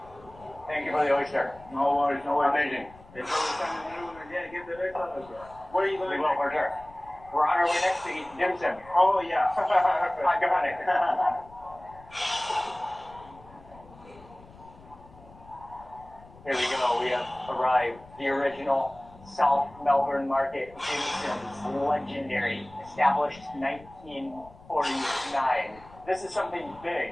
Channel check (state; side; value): noise; left; rumble, 22 dB below the sound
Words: Thank you for the oyster. No worries, no worries. Amazing. It's always time to do it. Yeah, get the best of it. Where are you We going? will, for sure. We're on our way next to eat dim sum. Oh, yeah. I got it. Here we go. We have arrived. The original South Melbourne Market, dim sums, legendary, established 1949. This is something big,